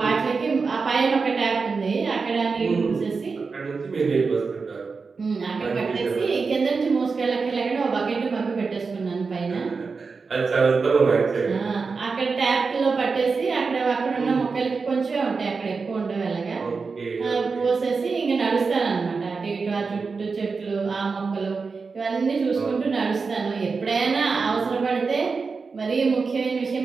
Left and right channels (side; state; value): left; quieter; 4.7 dB